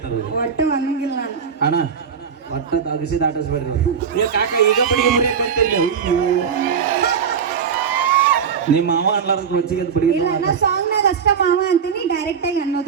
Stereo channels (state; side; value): quieter; left; 6.8 dB